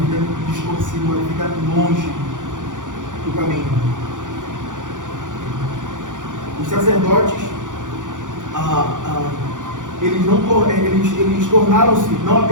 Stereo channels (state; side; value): late; left; 0.87 ms